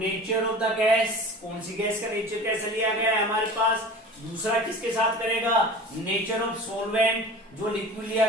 ऑफ द गैस। कौन सी गैस का नेचर कैसे लिया गया है हमारे पास। दूसरा किसके साथ करेगा, नेचर ऑफ सॉल्वेंट, जो लिक्विड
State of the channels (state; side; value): normal; both; correlation 0.37